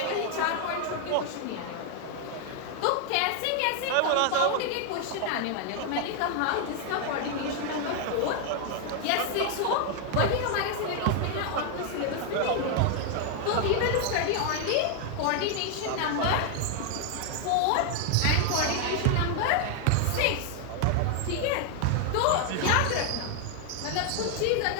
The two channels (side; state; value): both; different; correlation 0.00